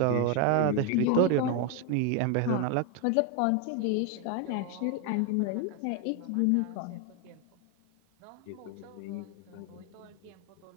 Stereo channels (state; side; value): different; both; correlation 0.01